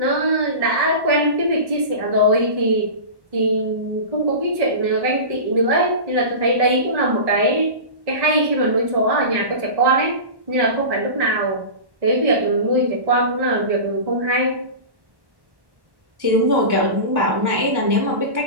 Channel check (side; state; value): left; late; 1.1 ms